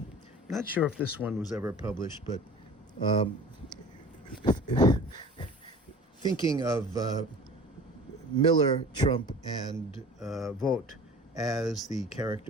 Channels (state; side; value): normal; both; correlation 0.42